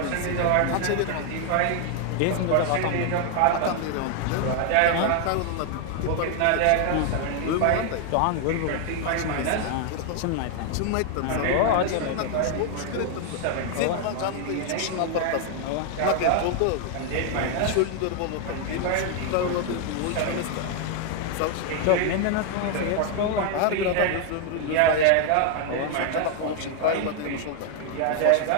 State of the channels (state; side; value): different; both; correlation 0.00